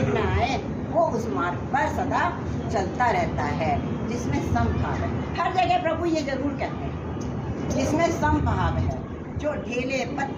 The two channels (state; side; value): identical; both; correlation 1.00